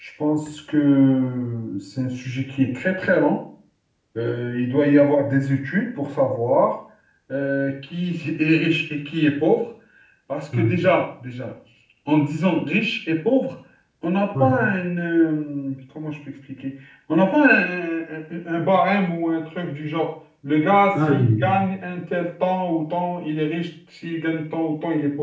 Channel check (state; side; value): identical; both; correlation 1.00